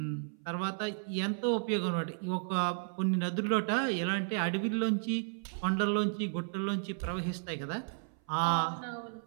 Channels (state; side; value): silent; left; 56 dB below the other